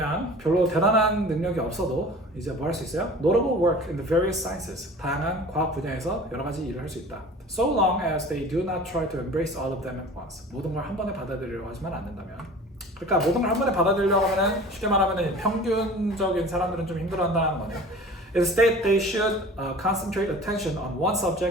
별로 대단한 능력이 없어도 이제 뭐 할 수 있어요? Notable work in the various sciences. 다양한 과학 분야에서 여러 가지 일을 할 수 있다. So long as they do not try to embrace all of them at once. 모든 걸 한 번에 받아들이려고 하지만 않는다면. 그러니까 모든 걸 한 번에 받아들이려고 하면은 쉽게 말하면은 평균적인 사람들은 좀 힘들어한다는 거네요. Instead, they should concentrate attention on one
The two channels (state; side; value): normal; both; correlation 0.41